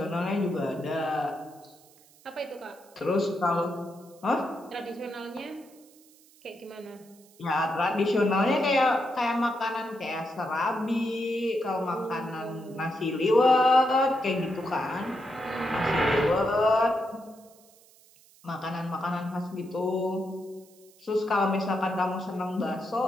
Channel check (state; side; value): noise; right; hiss, 27 dB below the sound